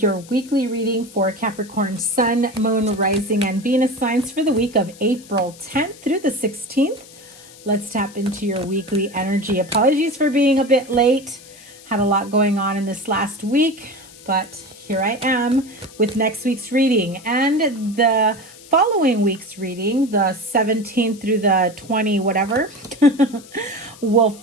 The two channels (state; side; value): noise; left; hiss, 21 dB below the sound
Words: your weekly reading for Capricorn Sun, Moon, Rising, and Venus signs for the week of April 10th through the 16th. Let's tap into your weekly energy. Apologies for being a bit late. Had a lot going on in this last week, but here I am with next week's reading. And the following week's reading, the 17th through the 20 whatever, will